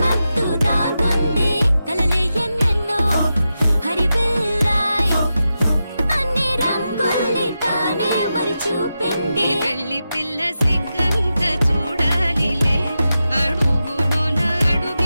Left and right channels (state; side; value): inverted; both; correlation -0.90